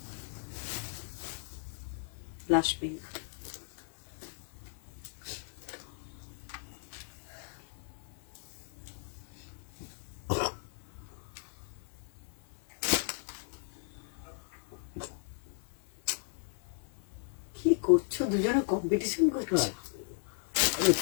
ব্লাশ পিঙ্ক। কি করছো দুজনে কম্পিটিশন করছো?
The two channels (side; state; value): right; silent; digital silence